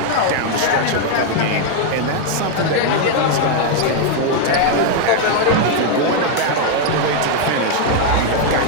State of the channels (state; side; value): different; both; correlation 0.00